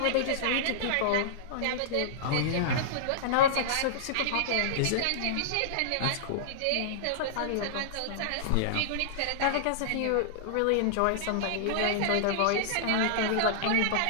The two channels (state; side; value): different; both; correlation -0.02